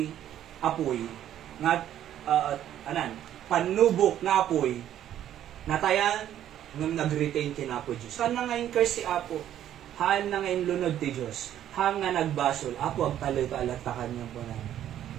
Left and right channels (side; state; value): left; quieter; 11.3 dB